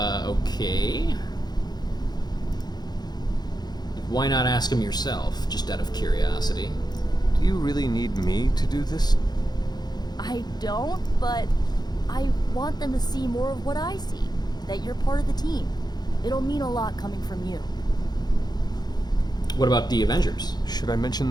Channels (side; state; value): right; late; 0.20 ms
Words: Why not ask him yourself, just out of curiosity? Do you really need me to do this? I don't, but I want them to see more of what I see. That you're part of the team. It'll mean a lot coming from you. What about the Avengers? Should I mention